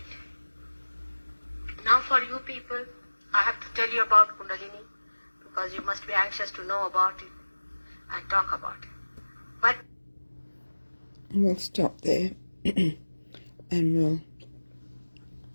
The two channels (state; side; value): inverted; both; correlation -1.00